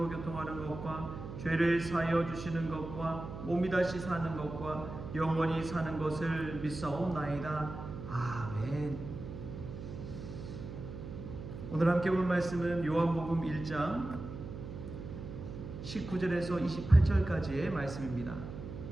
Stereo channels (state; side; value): noise; right; hum, 9 dB below the sound